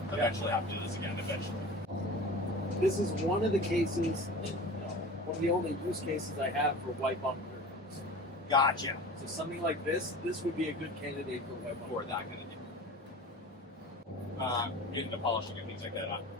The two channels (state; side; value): normal; both; correlation 0.37